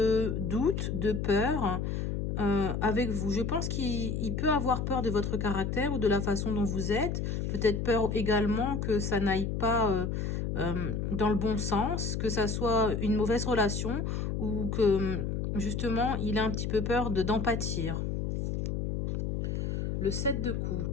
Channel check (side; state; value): left; noise; hum, 1 dB below the sound